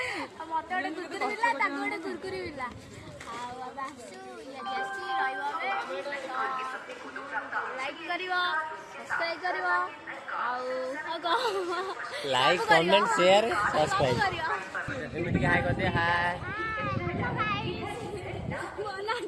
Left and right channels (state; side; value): identical; both; correlation 1.00